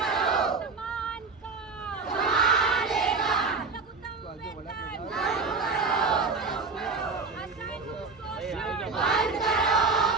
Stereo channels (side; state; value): left; quieter; 4.5 dB